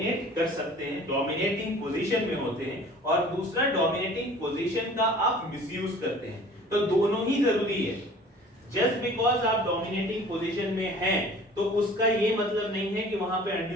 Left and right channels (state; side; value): normal; both; correlation 0.47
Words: कर सकते हैं, डोमिनेटिंग पोजीशन में होते हैं, और दूसरा डोमिनेटिंग पोजीशन का आप मिसयूज करते हैं, तो दोनों ही जरूरी है। जस्ट बिकॉज आप डोमिनेटिंग पोजीशन में हैं तो उसका ये मतलब नहीं है कि वहां पे